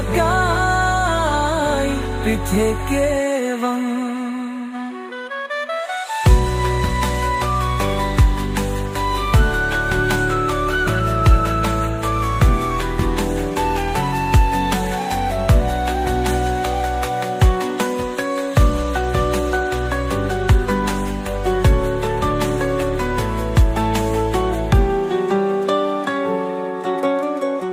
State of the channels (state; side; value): identical; both; correlation 1.00